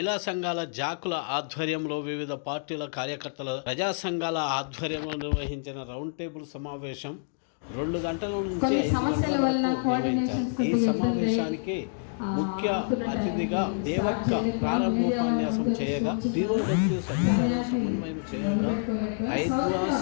సంఘాల జాకుల ఆధ్వర్యంలో వివిధ పార్టీల కార్యకర్తల ప్రజా సంఘాల ఆధ్వర్యంలో నిర్వహించిన రౌండ్ టేబుల్ సమావేశం 2 గంటల నుంచి 5 గంటల వరకు నిర్వహించారు. ఈ సమావేశానికి ముఖ్య అతిథిగా దేవక్క ప్రారంభోపన్యాసం చేయగా, పిఓడబ్ల్యూ సభ్యులను సమన్వయం చేయగా, ఐద్వా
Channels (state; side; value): silent; right; digital silence